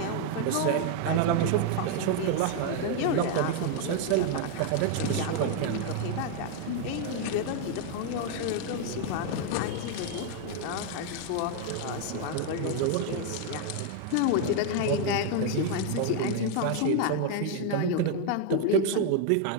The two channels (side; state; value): both; different; correlation 0.01